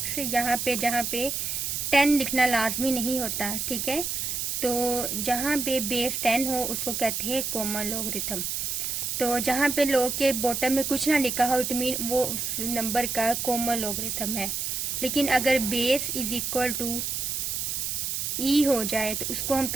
यहाँ पे जहाँ पे 10 लिखना लाजमी नहीं होता। ठीक है, तो जहाँ पे बेस 10 हो उसको कहते हैं कॉमन लॉगरिथम। तो जहाँ पे log के बॉटम में कुछ ना लिखा हो इट मीन वो उस नंबर का कॉमन लॉगरिथम है। लेकिन अगर base is equal to e हो जाए तो उसको हम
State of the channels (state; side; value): noise; right; hiss, 2 dB below the sound